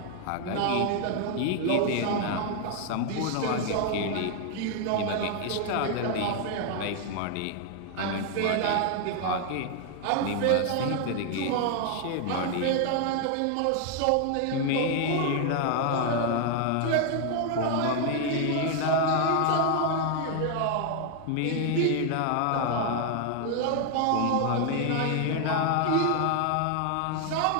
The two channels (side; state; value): both; different; correlation 0.00